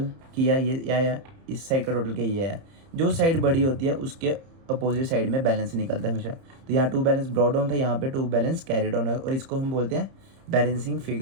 किया ये, या इस साइड का टोटल किया ये है। जो साइड बड़ी होती है उसके अपोजिट साइड में बैलेंस निकलता है हमेशा। तो यहाँ 2 बैलेंस ब्रॉट डाउन था, यहाँ पे 2 बैलेंस कैरी डाउन है, और इसको हम बोलते हैं बैलेंसिंग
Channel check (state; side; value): late; left; 30 ms